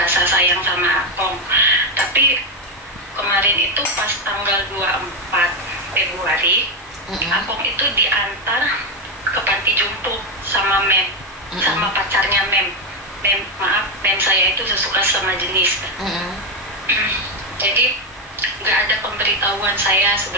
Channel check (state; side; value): normal; both; correlation 0.07